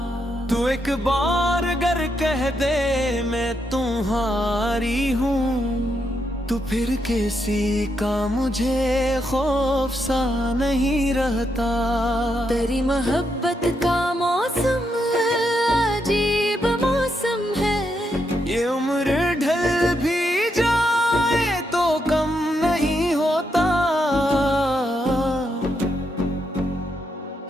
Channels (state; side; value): normal; both; correlation 0.80